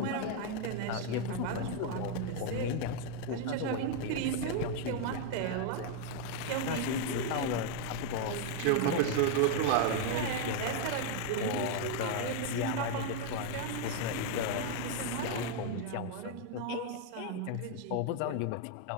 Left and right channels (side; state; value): both; different; correlation 0.00